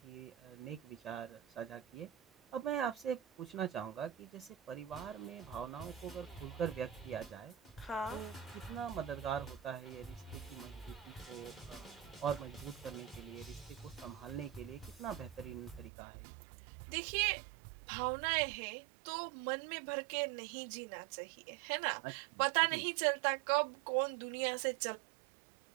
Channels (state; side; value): drops out; left; at 15.9 s